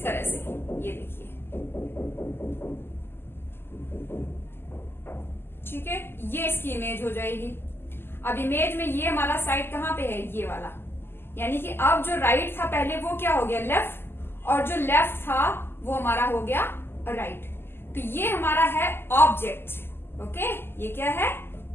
तरह से, ये देखिए, ठीक है, ये इसकी इमेज हो जाएगी। अब इमेज में ये हमारा साइड कहाँ पे है, ये वाला, यानी कि अब जो राइट था पहले वो क्या हो गया लेफ्ट, और जो लेफ्ट था वो हमारा हो गया राइट। तो ये हमारा है ऑब्जेक्ट। ओके, ये क्या है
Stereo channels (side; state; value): right; late; 0.11 ms